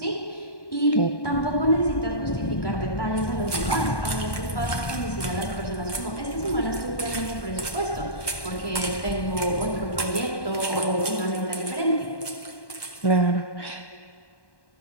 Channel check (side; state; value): right; late; 1.1 ms